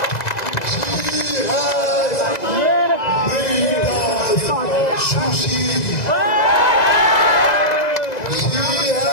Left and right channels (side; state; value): right; late; 2.0 ms